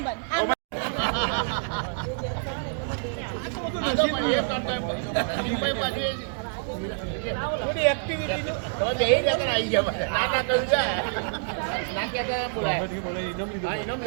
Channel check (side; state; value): left; silent; digital silence